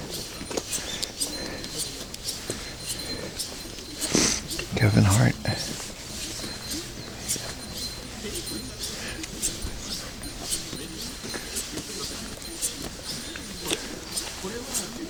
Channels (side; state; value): both; identical; correlation 1.00